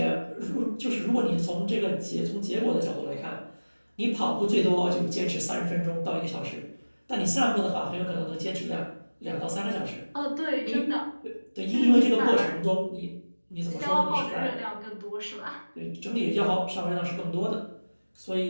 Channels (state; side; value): inverted; both; correlation -1.00